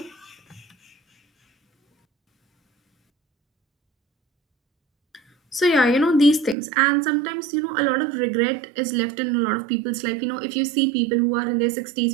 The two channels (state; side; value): drops out; left; at 6.6 s